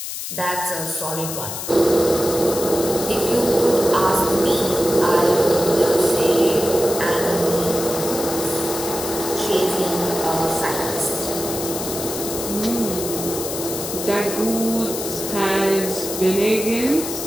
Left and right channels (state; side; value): noise; left; hiss, 6 dB below the sound